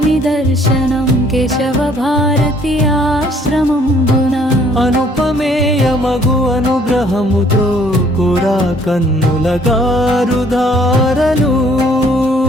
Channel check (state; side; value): normal; both; correlation 0.61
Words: दर्शनं केशव भारती आश्रमं అనుపమేయమగు అనుగ్రహముతో కురా కన్నుల గారుధారలు